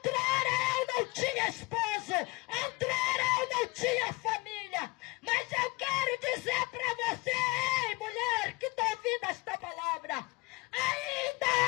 eu não tinha esposo. Outrora eu não tinha família. Mas eu quero dizer para você, ei, mulher, que está ouvindo esta palavra, ainda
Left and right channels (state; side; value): quieter; right; 25.2 dB